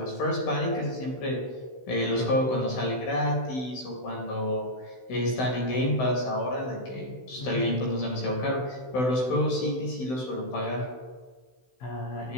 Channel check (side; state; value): right; late; 16 ms